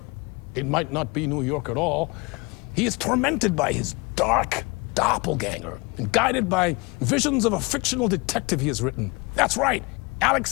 it might not be New York at all. He is tormented by his dark doppelganger and guided by visions of a fictional detective he has written. That's right,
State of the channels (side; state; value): right; quieter; 27.2 dB